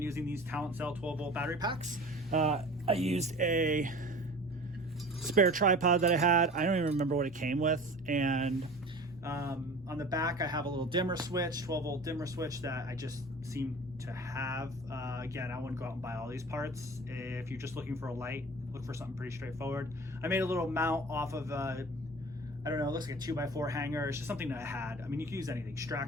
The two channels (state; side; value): noise; left; rumble, 25 dB below the sound